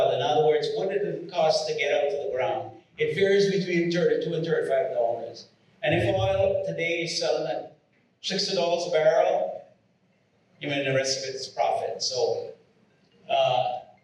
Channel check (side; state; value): both; identical; correlation 1.00